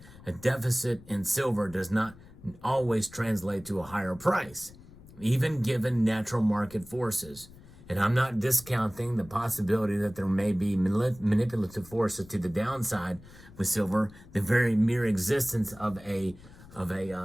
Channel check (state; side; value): noise; left; rumble, 21 dB below the sound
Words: a deficit in silver does not always translate to a higher price, even given natural market forces. And I'm not discounting the possibility that there may be manipulative forces to the downside with silver. The very mere existence of a